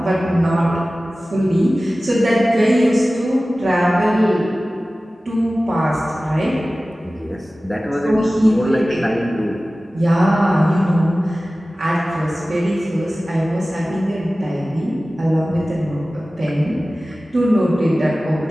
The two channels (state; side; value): normal; both; correlation 0.97